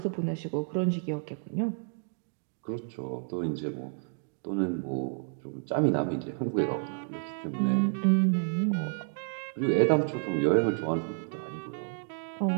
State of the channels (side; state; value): left; silent; 58 dB below the other